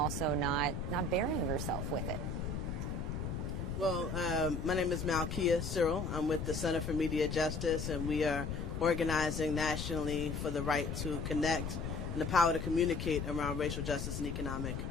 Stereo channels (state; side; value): noise; left; rumble, 3 dB below the sound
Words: not burying yourself with it? Well, my name is Malkia Cyril. I'm with the Center for Media Justice, and we are organizing nationally for the right to connect and the power to communicate around racial justice and economic